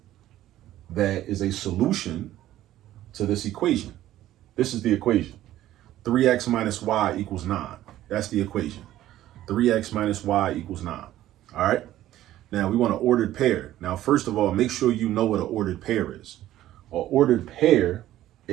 that is a solution to this equation. This is the equation. 3x minus y equals 9. That's the equation. 3x minus y equals 9, all right? Now, we want an ordered pair. Now, first of all, make sure you know what an ordered pair is. An ordered pair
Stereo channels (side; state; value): left; quieter; 13.7 dB